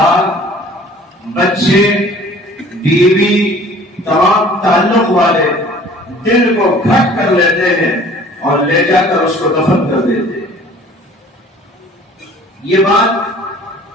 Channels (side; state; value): both; normal; correlation 0.50